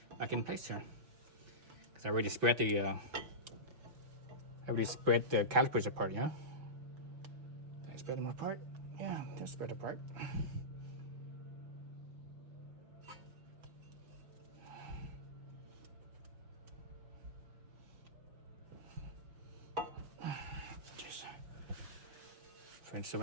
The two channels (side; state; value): left; late; 5.8 ms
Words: back in place here, because I already spread the calipers apart. Yeah, did I spread them apart? Yeah, they're spread apart. So